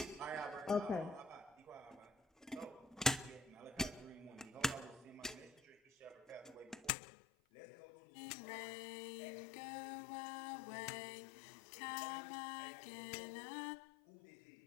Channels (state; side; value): drops out; right; at 6.9 s